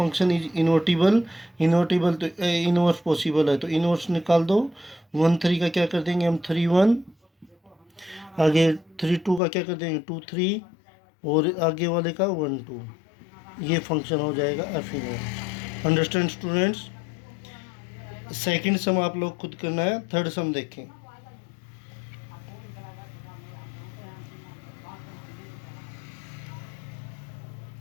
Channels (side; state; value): right; drops out; at 9.4 s